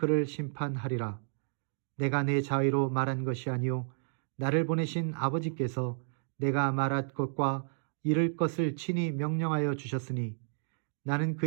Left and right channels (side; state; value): left; silent; digital silence